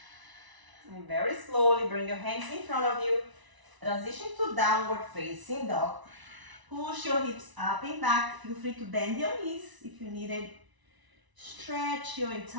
And very slowly bring your hands in front of you. Transition to downward facing dog. Push your hips up and back. Feel free to bend your knees if you need it. Stretch your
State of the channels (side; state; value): left; late; 1.0 ms